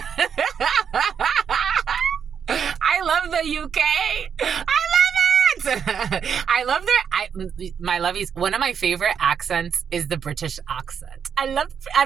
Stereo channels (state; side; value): quieter; left; 7.3 dB